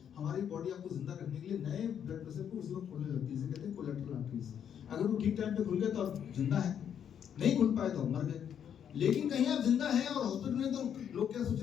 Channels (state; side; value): quieter; right; 8.7 dB